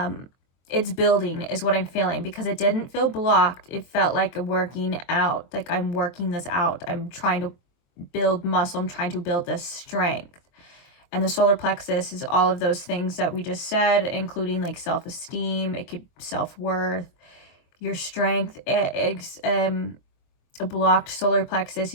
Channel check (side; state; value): right; late; 23 ms